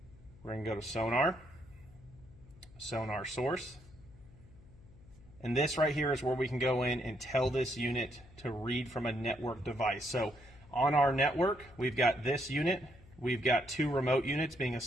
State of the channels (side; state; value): left; noise; hum, 23 dB below the sound